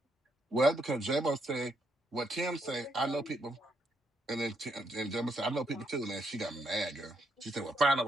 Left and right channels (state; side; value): normal; both; correlation 0.76